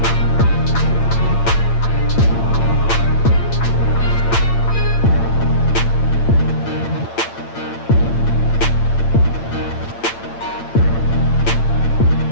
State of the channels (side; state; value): right; late; 8.8 ms